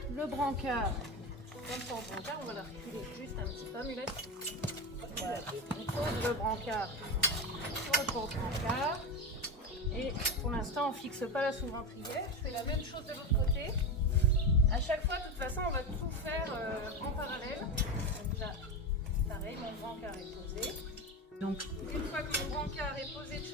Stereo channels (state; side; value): normal; both; correlation 0.19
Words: le brancard. Comme ça, en brancard, on va la reculer juste un petit peu, Mulette. Voilà. On pose le brancard sur le porte-brancard. Et pour l'instant, on ne fixe pas la sous-ventrière. Je fais la même chose de l'autre côté. À chaque fois, de toute façon, on va tout faire en parallèle. Donc là, pareil, mon brancard est posé. Donc, une fois que mon brancard est posé de